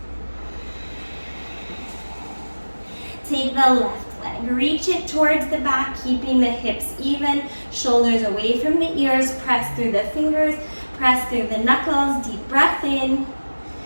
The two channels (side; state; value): both; inverted; correlation -1.00